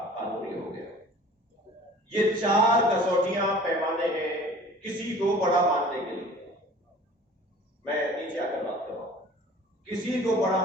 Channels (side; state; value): both; normal; correlation 0.46